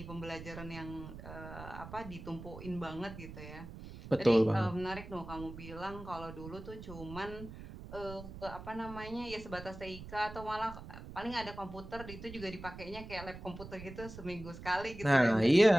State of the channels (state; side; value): noise; right; rumble, 12 dB below the sound